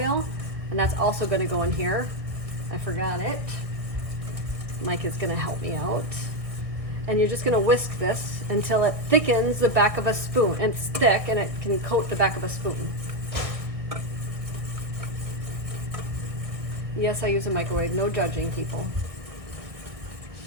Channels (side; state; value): left; late; 1.6 ms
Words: and that's also going to go in here. I forgot it. Micah's going to help me out. And you're just going to whisk this until it thickens the back of a spoon. And it's thick and it can coat the back of a spoon. Yes, I use a microwave. No judging, people.